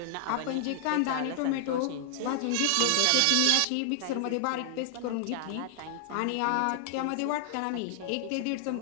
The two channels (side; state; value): both; different; correlation 0.00